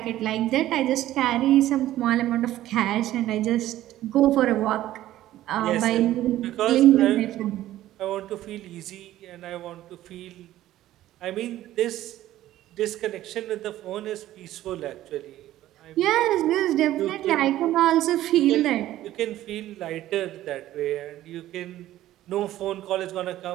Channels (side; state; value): left; quieter; 14.1 dB